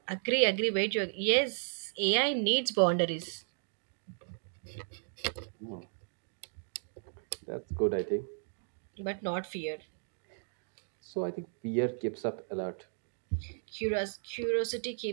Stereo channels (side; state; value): left; silent; digital silence